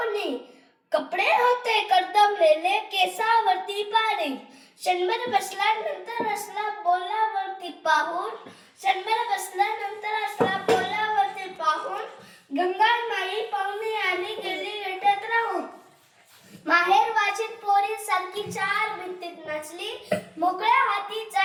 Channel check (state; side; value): identical; both; correlation 1.00